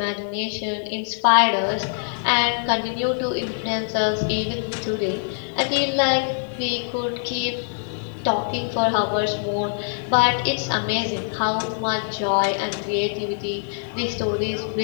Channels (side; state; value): right; silent; digital silence